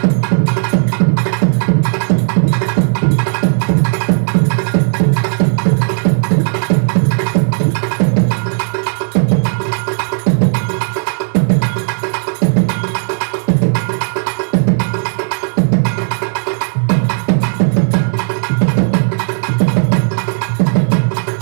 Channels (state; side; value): silent; left; digital silence